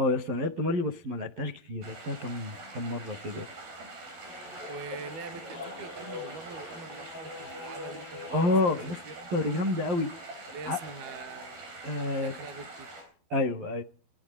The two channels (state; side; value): late; left; 12 ms